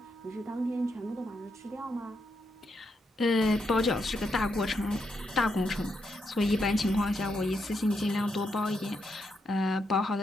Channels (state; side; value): normal; both; correlation 0.81